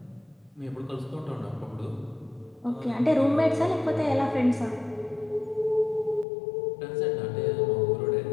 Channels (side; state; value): right; drops out; at 6.2 s